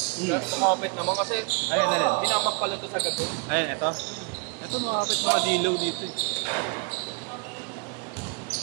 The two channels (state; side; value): quieter; left; 32.4 dB